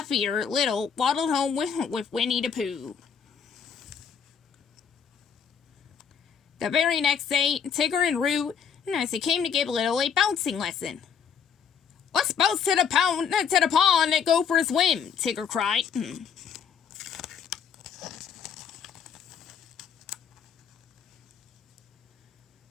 Little waddled home with Winnie the Pooh. The very next day, Tigger and Roo, as they came to give Little a bouncing lesson. "Let's bounce to the pond and go for a swim," Tigger cried.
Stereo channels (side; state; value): right; quieter; 6.9 dB